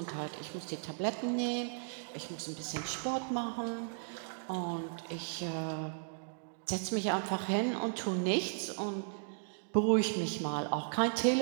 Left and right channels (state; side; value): silent; left; digital silence